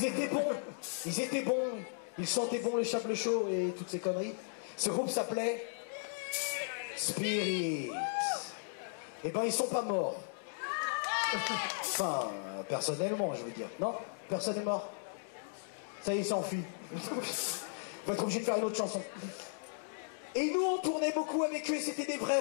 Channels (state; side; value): silent; right; digital silence